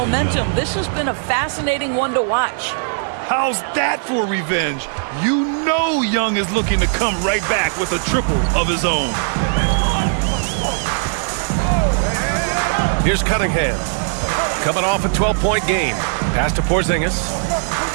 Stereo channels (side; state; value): left; silent; digital silence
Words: This has been a fascinating one to watch. How's that for revenge? You know Young is looking to come right back with a triple of his own. Here's Cunningham, coming off a 12-point game. Pass to Porzingis.